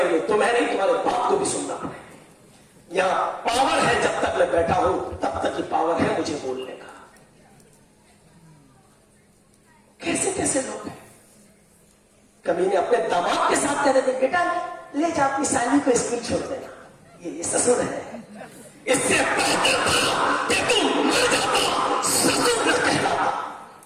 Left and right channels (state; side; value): identical; both; correlation 1.00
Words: तो तुम्हें नहीं, तुम्हारे बाप को भी सुनना पड़ेगा। यहाँ पावर है, जब तक मैं बैठा हूं तब तक ही पावर है मुझे बोलने का। कैसे कैसे लोग हैं, कभी ने अपने दामाद के साथ कह रहे थे बेटा ले जा अपनी साली को स्कूल छोड़ देना, ये ससुर है। इससे बेहतर था कि तुम मर जाता, ससुर न कहलाता।